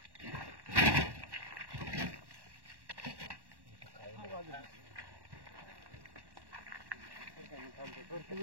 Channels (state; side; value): late; left; 1.1 ms